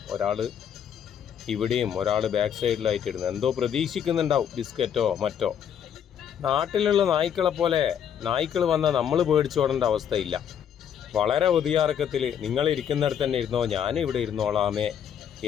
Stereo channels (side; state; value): right; quieter; 8.8 dB